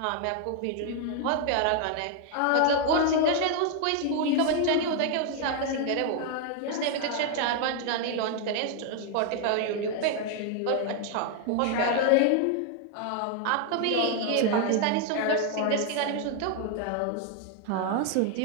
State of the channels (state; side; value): different; both; correlation 0.00